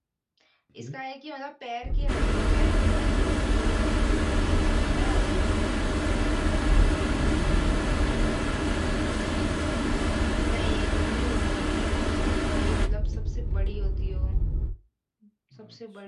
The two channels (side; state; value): both; identical; correlation 1.00